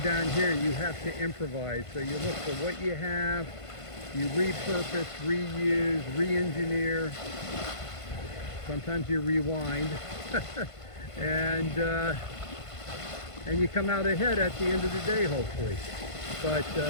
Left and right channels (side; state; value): right; late; 1.5 ms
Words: down here you have to improvise. So you look for what you have, you repurpose, reuse, re-engineer. Sometimes you rewind. and you come out ahead at the end of the day, hopefully. But